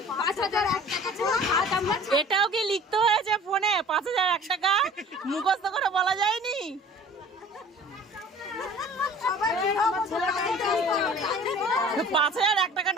5000 1 টাকা ছাড়া হাত আমরা। এটাও কি লিখতে হয়েছে ফোনে? 5000 1 টাকা মুখস্থ করে বলা যায়নি? 5000 1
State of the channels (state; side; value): normal; both; correlation 0.46